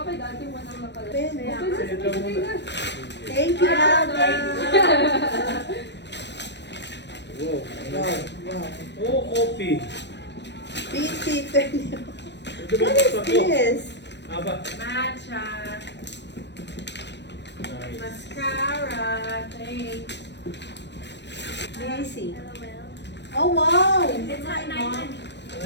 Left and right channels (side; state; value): right; late; 0.51 ms